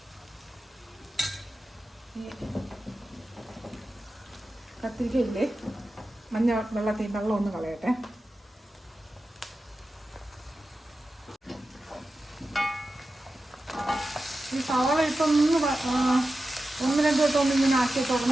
ഈ കത്തിരിക്കയില്ലേ, മഞ്ഞ വെള്ളം ഒന്ന് കളയട്ടെ. ഈ സവാള ഇപ്പം 1-2 വട്ടം ഇങ്ങനെ ആക്കിയിട്ട്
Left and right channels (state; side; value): normal; both; correlation 0.92